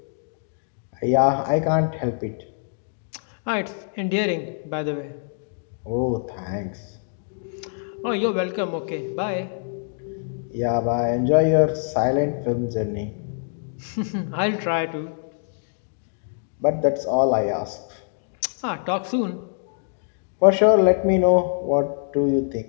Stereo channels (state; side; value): silent; right; digital silence